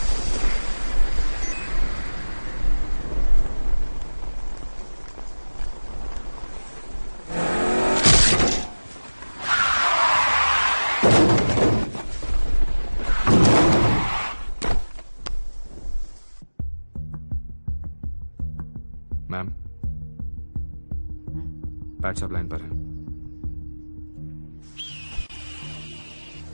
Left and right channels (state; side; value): inverted; both; correlation -1.00